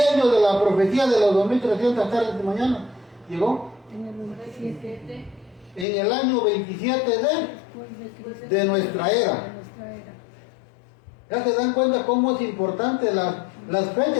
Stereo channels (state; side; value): drops out; right; at 5.9 s